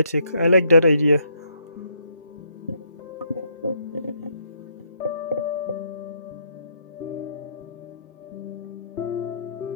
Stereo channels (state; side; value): inverted; both; correlation -0.70